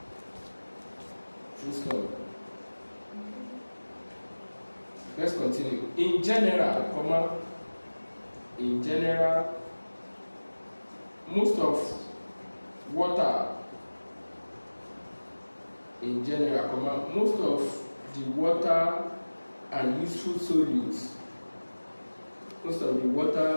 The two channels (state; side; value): inverted; both; correlation -1.00